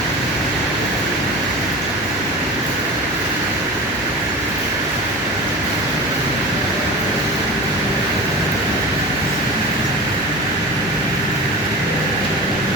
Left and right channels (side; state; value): both; normal; correlation 0.32